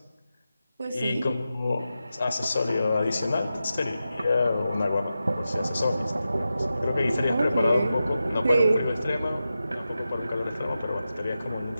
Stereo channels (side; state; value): both; inverted; correlation -0.91